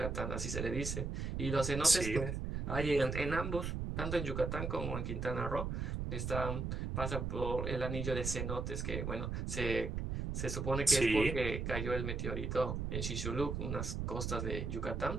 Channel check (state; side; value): noise; right; rumble, 2 dB below the sound